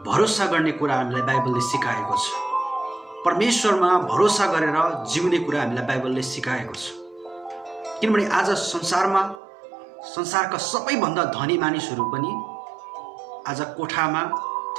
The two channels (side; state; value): left; drops out; at 9.4 s